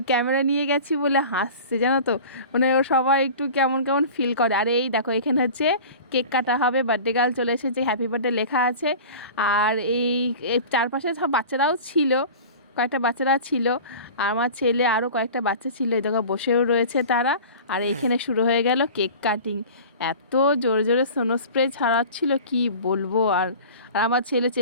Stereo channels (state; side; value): inverted; both; correlation -0.38